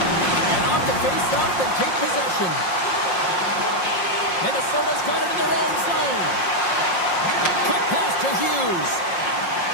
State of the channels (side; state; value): right; late; 5.6 ms